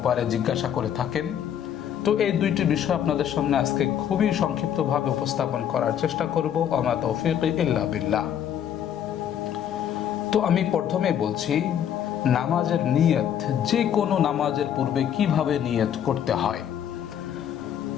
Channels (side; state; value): right; quieter; 9.5 dB